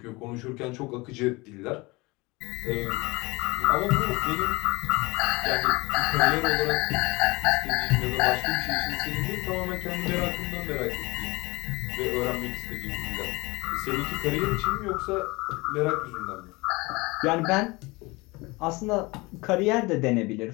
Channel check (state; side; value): quieter; right; 23.9 dB